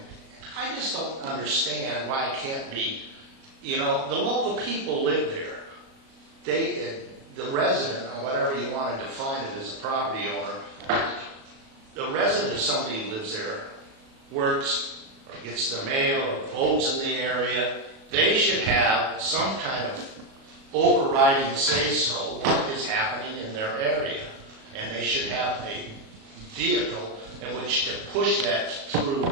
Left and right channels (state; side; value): late; left; 37 ms